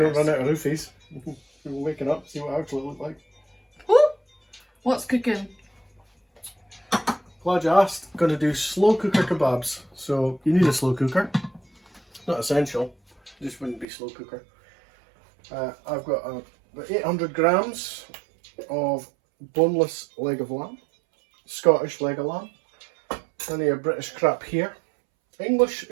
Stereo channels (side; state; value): left; drops out; at 13.9 s